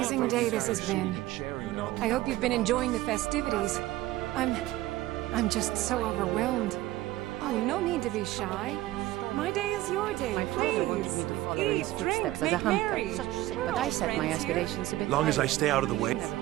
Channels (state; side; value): quieter; left; 16.5 dB